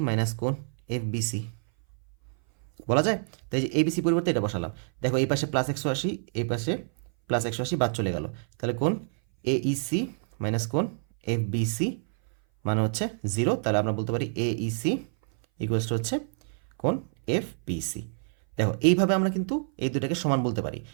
মাইনাস কোণ এফ বি সি বলা যায়। তাই যে এবিসি পরিবর্তে এটা বসালাম। দেখো এই পাশে +180, এই পাশে +180 বাদ চলে গেল। তাহলে কোণ এইসি মাইনাস কোণ এফ বিসি মানে হচ্ছে 0। তাহলে আমরা বলতে পারি এইসি ইকুয়ালস টু হচ্ছে কোণ এফ বিসি। দেখো এইভাবে আমরা কিন্তু এই দুটাকে সমান বলতে পারি।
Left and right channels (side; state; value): left; silent; 58 dB below the other